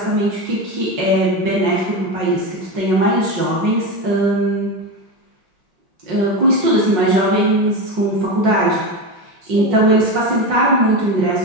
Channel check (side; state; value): left; late; 5.6 ms